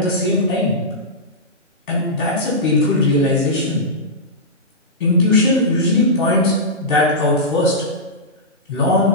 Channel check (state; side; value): normal; both; correlation -0.13